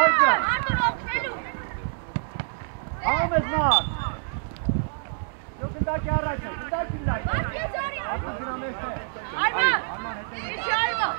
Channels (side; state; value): left; silent; digital silence